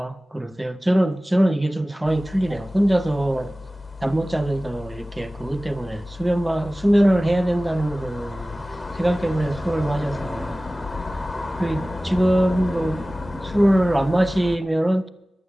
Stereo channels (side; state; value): both; normal; correlation 0.97